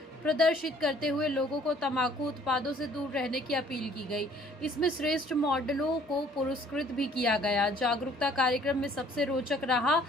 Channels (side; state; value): both; normal; correlation 0.58